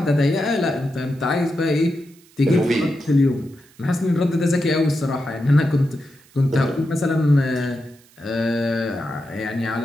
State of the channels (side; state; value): right; noise; hiss, 29 dB below the sound